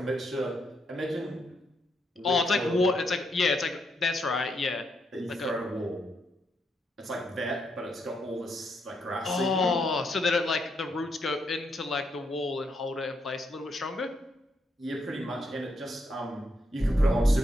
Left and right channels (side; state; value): both; normal; correlation 0.78